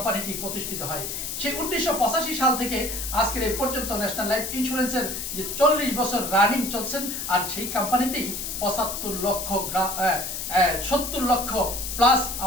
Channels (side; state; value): left; noise; hiss, 5 dB below the sound